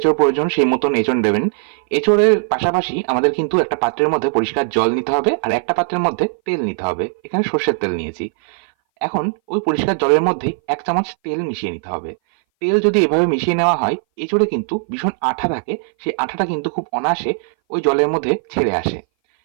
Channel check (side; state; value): left; silent; 60 dB below the other